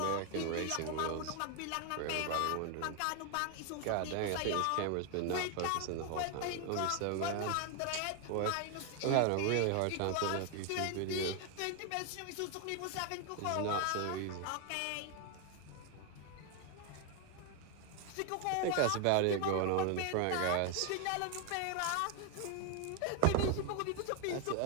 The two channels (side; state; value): both; different; correlation 0.01